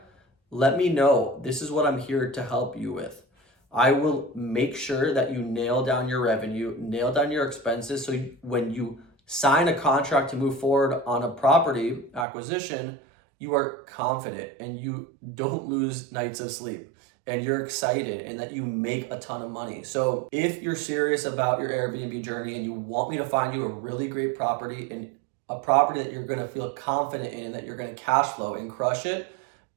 let me know. This is what I'm here to help you with. I will make sure that you nail down your revenue, nail down your expenses, so when you sign a contract to move forward on a property acquisition, you are confident and you don't lose nights of sleep. and you're excited and that you make a ton of money. So if you're serious about your Airbnb journey and you want me to find you a really great property and a property that you're going to feel confident in and that you're going to cash flow and crush it,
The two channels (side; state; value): left; drops out; at 12.2 s